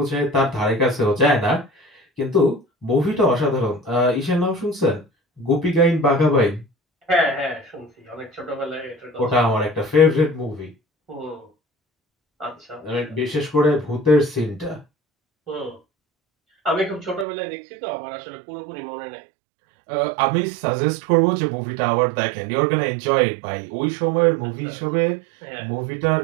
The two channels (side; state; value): left; drops out; at 17.2 s